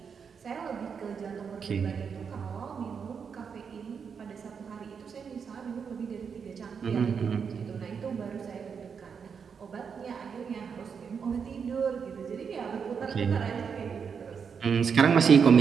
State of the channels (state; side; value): quieter; left; 6.4 dB